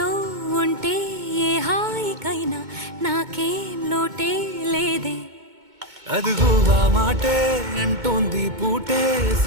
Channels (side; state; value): left; late; 2.2 ms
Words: ఉంటే ఏ హాయికైనా నాకేం లోటే లేదే అదుగు ఆ మాటే అంటోంది పూటే